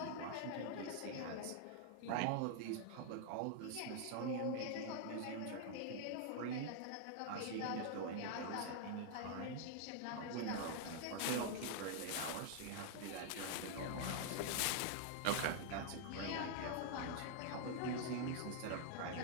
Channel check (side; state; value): both; different; correlation 0.00